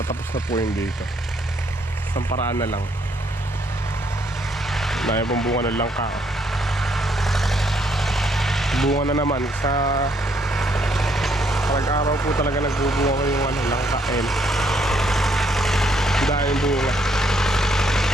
na po yung dito. Isang paraan na lang. Dahil pong bunga ng langka. Bunga na naman sa araw po talaga nagbubunga yung ano, langka. Dahil bunga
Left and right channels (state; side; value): normal; both; correlation 0.70